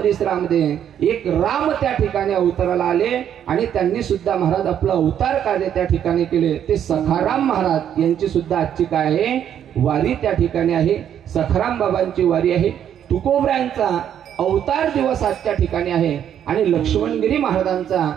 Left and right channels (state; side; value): quieter; left; 9.6 dB